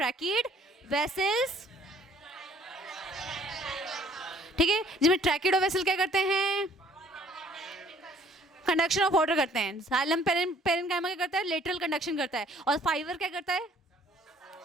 वेसल्स, ठीक है, जिसमें ट्रैकिड और वेसल क्या करते हैं, कंडक्शन ऑफ वाटर करते हैं। जाइलम पेरेन्काइमा क्या करता है, लेटरल कंडक्शन करता है, और फाइबर क्या करता है,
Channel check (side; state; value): both; normal; correlation 0.58